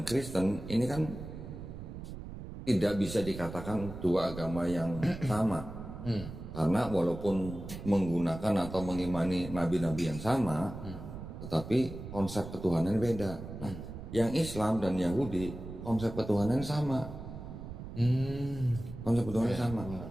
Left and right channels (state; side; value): noise; right; rumble, 10 dB below the sound